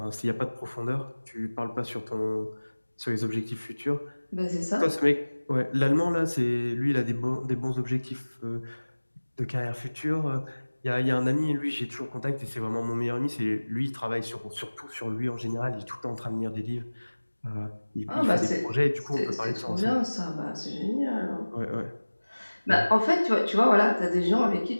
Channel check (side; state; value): both; inverted; correlation -1.00